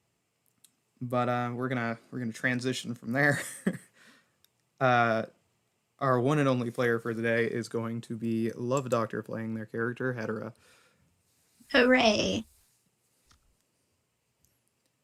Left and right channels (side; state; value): both; identical; correlation 1.00